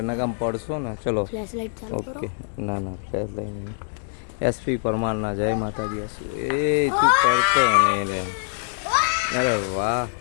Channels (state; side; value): silent; right; digital silence